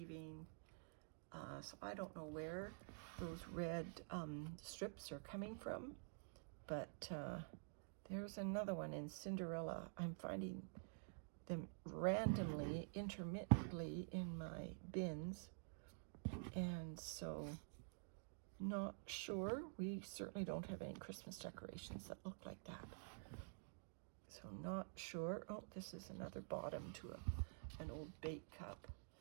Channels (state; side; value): silent; left; digital silence